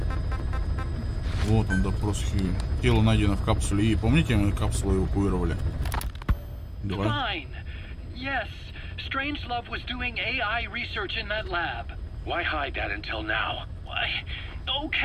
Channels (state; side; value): identical; both; correlation 1.00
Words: Вот он, допрос Хьюи. Тело найдено в капсуле И. Помните, мы капсулу эвакуировали? Давай. Fine. Yes, Strangelove was doing AI research in that lab. Why hide that until now? Why?